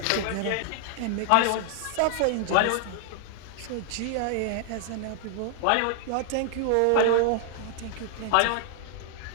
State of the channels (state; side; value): different; both; correlation 0.00